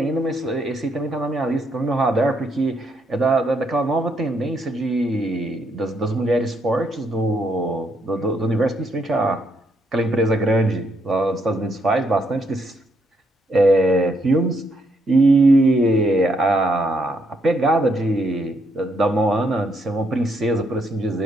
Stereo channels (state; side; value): normal; both; correlation 0.75